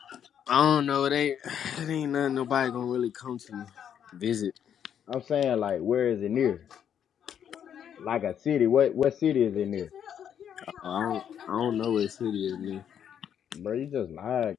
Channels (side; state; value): right; quieter; 8.9 dB